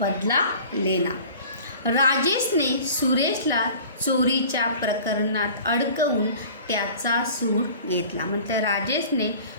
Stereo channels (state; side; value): inverted; both; correlation -0.44